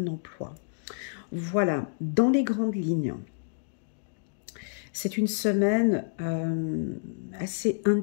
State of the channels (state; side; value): silent; right; digital silence